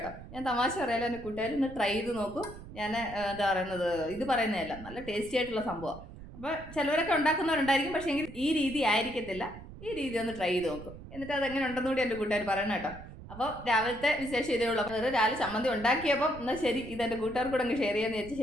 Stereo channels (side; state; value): right; noise; rumble, 15 dB below the sound